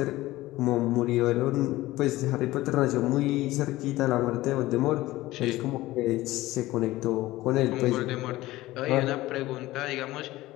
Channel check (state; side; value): quieter; right; 17.5 dB